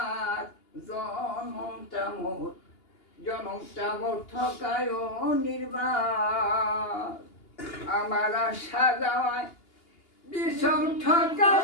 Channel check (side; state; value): right; late; 2.8 ms